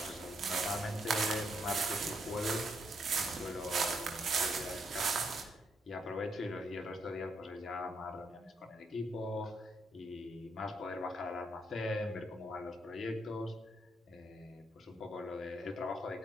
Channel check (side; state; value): both; normal; correlation 0.76